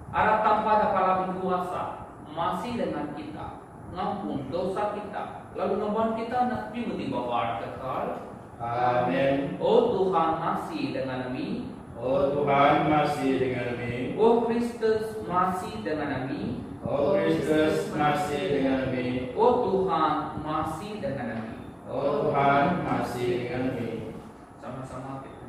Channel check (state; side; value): identical; both; correlation 1.00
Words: Arah tanpa dapat kuasa masih dengan kita. Ngampun dosa kita, lalu ngeban kita nak di bawah kekal. Amin. Oh Tuhan masih dengan kami. Oh Tuhan masih dengan kami. Oh Kristus masih dengan kami. Oh Kristus masih dengan kami. Oh Tuhan masih dengan kami. Oh Tuhan masih dengan kami. Sama-sama kita